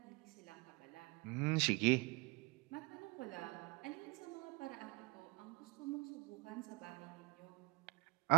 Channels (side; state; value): left; quieter; 26.6 dB